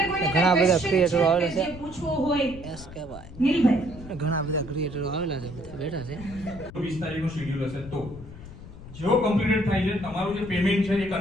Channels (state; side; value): noise; left; rumble, 15 dB below the sound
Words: કોઈને ઘણા બધા ક્રિએટરો આવેલા છે. જે પૂછવું હોય એસકે ભાઈ નીલભાઈ ઘણા બધા ક્રિએટરો આવેલા છે, બધા બેઠા છે. 20 તારીખનો શેડ્યુલ હશે તો જો કમ્પ્લીટેડ થાય છે તમારું જે પેમેન્ટ છે એ